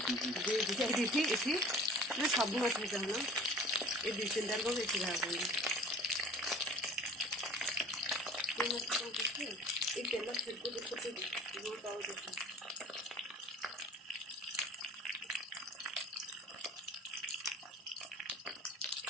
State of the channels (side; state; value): both; normal; correlation 0.45